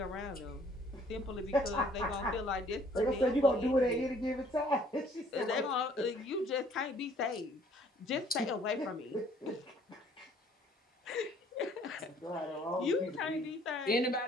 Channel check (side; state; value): both; normal; correlation 0.59